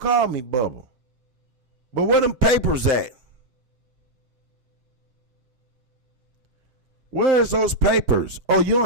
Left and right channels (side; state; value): left; late; 7.7 ms